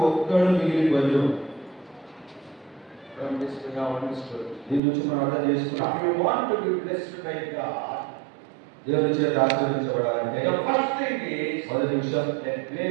ఒక్కడు మిగిలిపోయాడు. From this we have understood. దీని నుంచి మనం అర్థం చేసుకున్నాం. If you want to be blessed by God, దేవుని చేత ఆశీర్వదించబడాలంటే the first thing is మొదటి విషయం a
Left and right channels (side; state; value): left; drops out; at 4.8 s